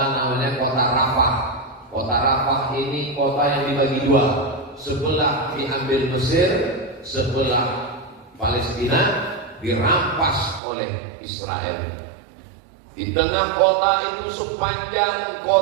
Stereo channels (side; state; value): left; drops out; at 10.6 s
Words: namanya kota Rafah. Kota Rafah ini kota yang dibagi dua. Sebelah diambil Mesir, sebelah Palestina dirampas oleh Israel. Di tengah kota itu sepanjang